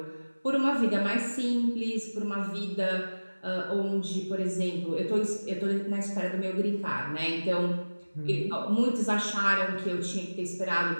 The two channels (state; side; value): inverted; both; correlation -1.00